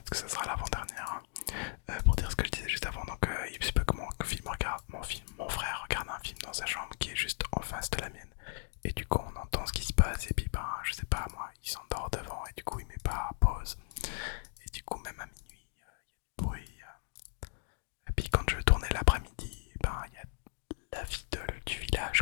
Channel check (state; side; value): silent; right; digital silence